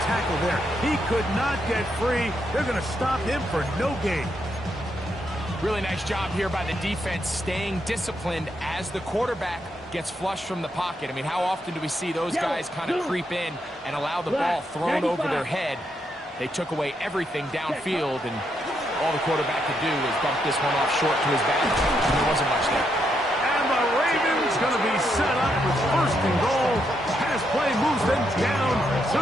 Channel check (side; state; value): both; normal; correlation 0.79